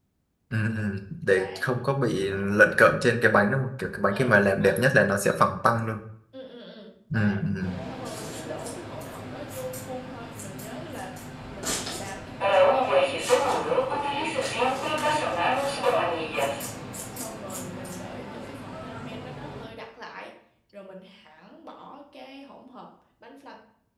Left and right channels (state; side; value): identical; both; correlation 1.00